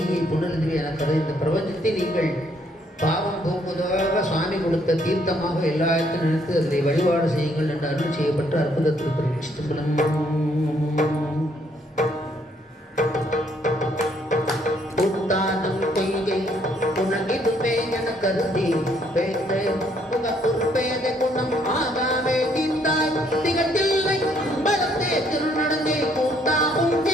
புனருதுவே என கதை. இந்த பிரபஞ்சத்தை நீங்கள் பாவம் போக்குவதாக சுவாமி கொடுத்த தீர்த்தமாக எல்லா இடத்தையும் நினைத்து அதை வழிபாடு செய்யுங்கள் என்று அருள் செய்யப்பட்ட அற்புத திருப்பதி சிதம்பரம். கருதி பேச பொறுப்பேதை குணம் ஆகாமே தீர்த்தாய் திகட்டில்லை பலத்தே திருநடந்தே கூட்டாகும்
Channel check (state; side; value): normal; both; correlation 0.68